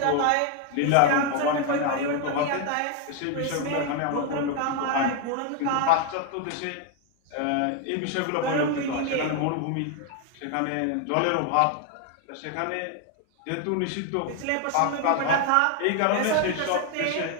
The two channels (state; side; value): different; both; correlation 0.01